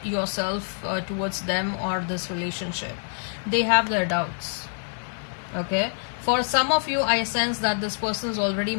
yourself towards them or this relationship. They have their doubts. Okay, for some of you, I sense that this person is already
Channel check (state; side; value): silent; right; digital silence